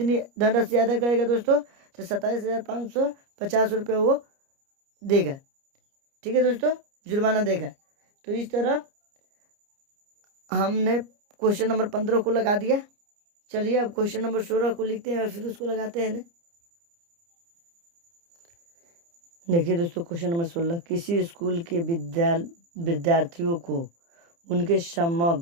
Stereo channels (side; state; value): left; late; 29 ms